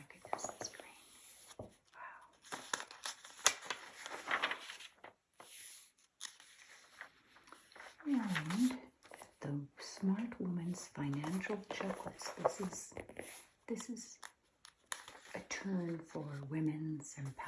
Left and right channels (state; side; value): identical; both; correlation 1.00